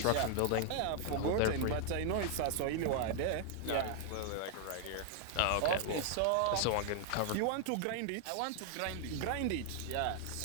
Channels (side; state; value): both; different; correlation 0.00